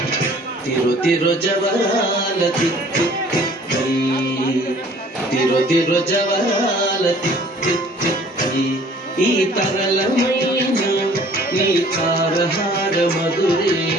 తిరు తిరు జవరాల తిత్తి తిత్తి తిరు తిరు జవరాల తిత్తి తిత్తి ఈ తరళమైన నీ తారహార మధురే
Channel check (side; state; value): both; normal; correlation 0.53